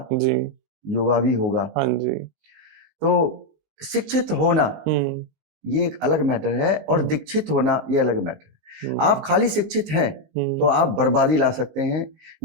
जी, युवा भी होगा। हाँ जी। तो शिक्षित होना ये एक अलग मैटर है, और दीक्षित होना ये अलग मैटर है। आप खाली शिक्षित हैं तो आप बर्बादी ला सकते हैं,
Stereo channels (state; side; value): late; left; 19 ms